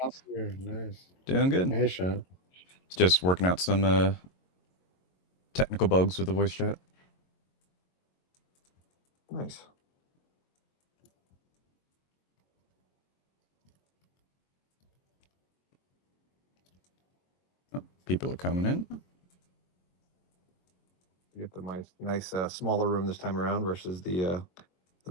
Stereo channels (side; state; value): right; late; 22 ms